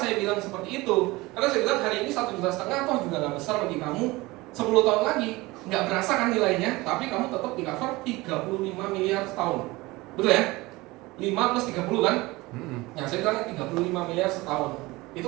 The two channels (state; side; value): quieter; left; 21.3 dB